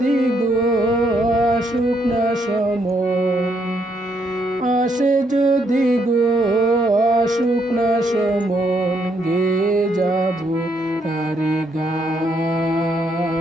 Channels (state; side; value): normal; both; correlation 0.74